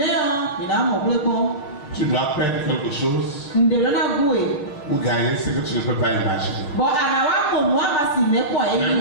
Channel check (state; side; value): late; right; 6.7 ms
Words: Tu dois perdre quelque chose ou gagner ce que tu ne peux pas imaginer. Mais vous voyez